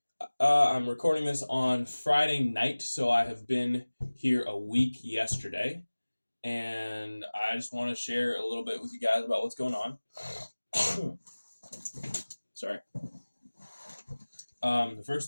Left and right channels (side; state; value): both; inverted; correlation -1.00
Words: I'm recording this on Friday night, so I have been here a week yesterday, and I just want to share a little bit with you guys about what's going on. Sorry. The first